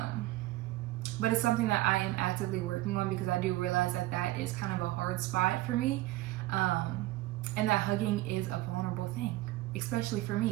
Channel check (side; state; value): left; quieter; 17.6 dB